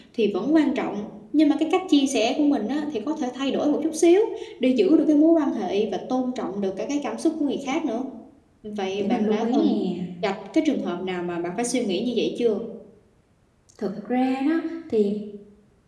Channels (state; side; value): identical; both; correlation 1.00